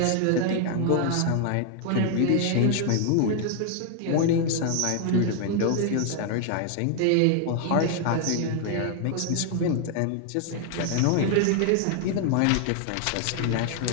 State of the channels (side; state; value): both; different; correlation 0.00